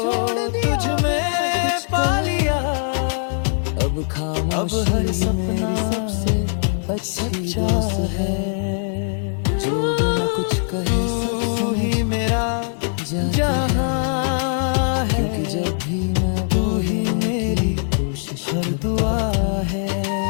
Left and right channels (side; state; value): right; silent; digital silence